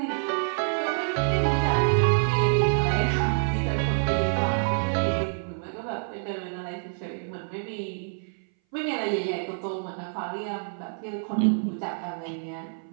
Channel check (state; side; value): silent; left; 58 dB below the other